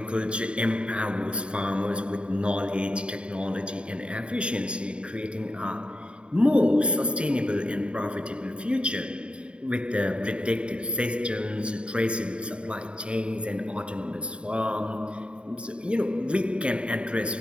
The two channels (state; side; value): late; left; 0.055 ms